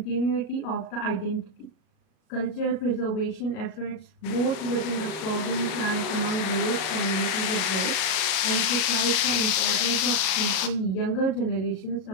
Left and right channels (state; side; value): late; right; 38 ms